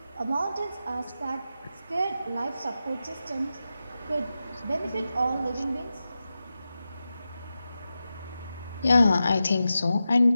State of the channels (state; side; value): inverted; both; correlation -0.92